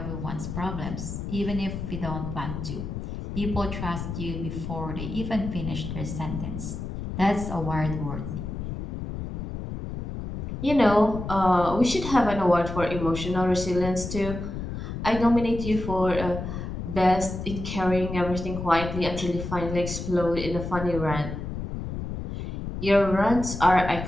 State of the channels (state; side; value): noise; left; rumble, 6 dB below the sound